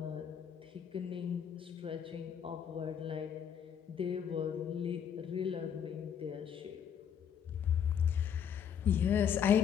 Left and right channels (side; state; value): right; quieter; 8.2 dB